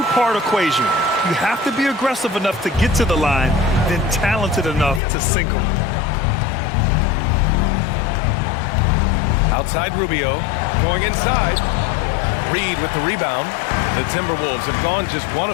equation. You have to be aggressive enough to get to the line, then talented enough to sink them. Outside Rubio, going inside. Reed with the rebound. The Timberwolves have gone just 1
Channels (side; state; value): right; drops out; at 5.0 s